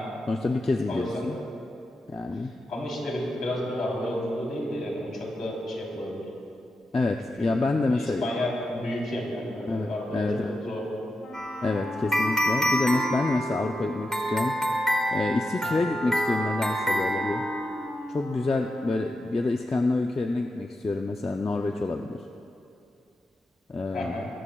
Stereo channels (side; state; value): both; normal; correlation 0.88